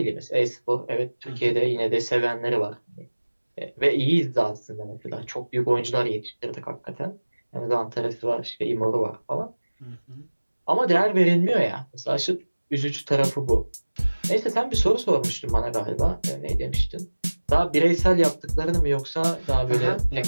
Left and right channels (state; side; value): inverted; both; correlation -1.00